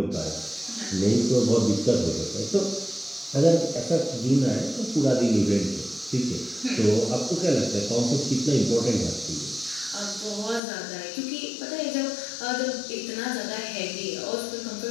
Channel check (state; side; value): drops out; right; at 10.6 s